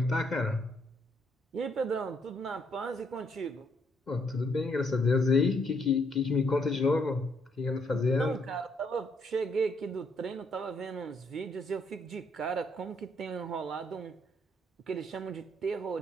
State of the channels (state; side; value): normal; both; correlation 0.72